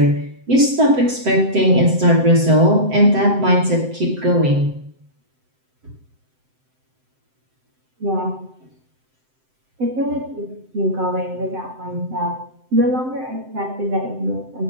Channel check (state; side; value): late; left; 7.8 ms